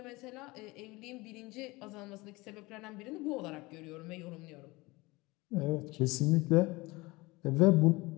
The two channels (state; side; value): quieter; right; 22.6 dB